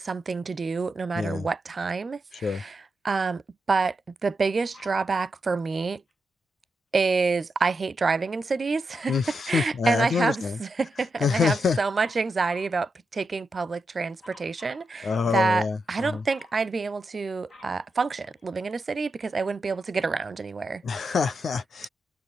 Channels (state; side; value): normal; both; correlation 0.86